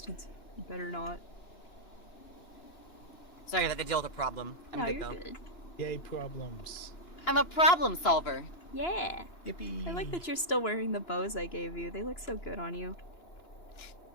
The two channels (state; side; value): late; right; 2.9 ms